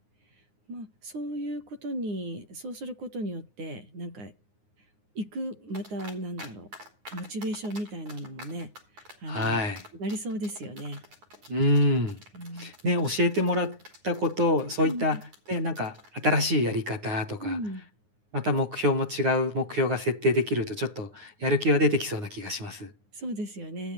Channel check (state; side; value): late; left; 9.6 ms